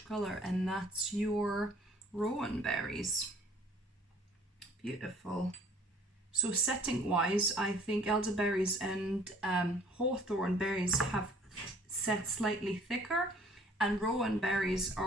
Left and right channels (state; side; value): normal; both; correlation 0.55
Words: color, and that's your rowan berries. Beautiful. So setting wise, I think elderberries and hawthorn berries have set slightly thicker, and rowan berries